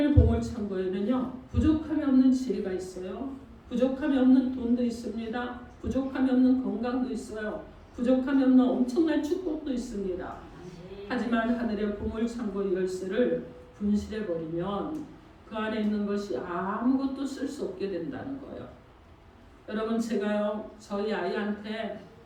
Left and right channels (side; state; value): both; identical; correlation 1.00